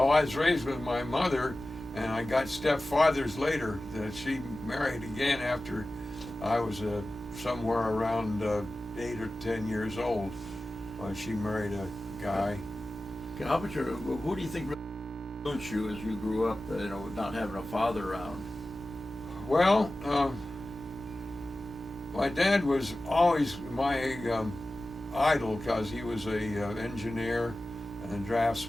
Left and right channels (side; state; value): both; normal; correlation 0.95